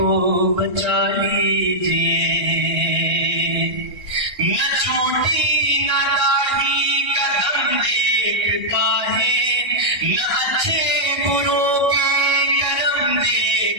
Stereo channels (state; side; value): late; left; 1.6 ms